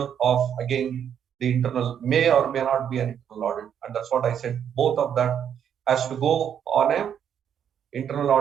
of, again, the internal, may or may not be an internal audit. And that's what I said. Both of that has to go on a internal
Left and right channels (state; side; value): quieter; left; 8.7 dB